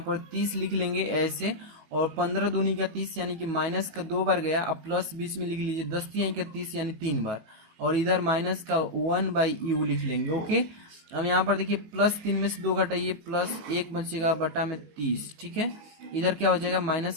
30 लिख लेंगे ऐसे, और 15 दूनी का 30 यानी कि माइनस का 2 बार गया, अब प्लस बीच में लिख लीजिए, 10 तिहाई का 30 यानी 3 बार, और इधर माइनस का 1/u लिख लेंगे, ओके। अब यहाँ पर देखिए +3 में से 2 घटाइए, +1 बचेगा बटा में 30, ठीक है। इधर क्या हो जाएगा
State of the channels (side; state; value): left; late; 19 ms